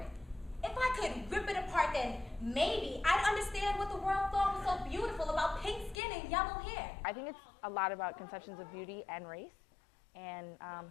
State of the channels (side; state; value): right; drops out; at 6.0 s